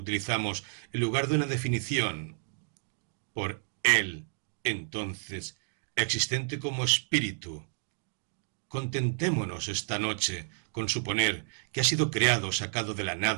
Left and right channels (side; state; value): left; silent; digital silence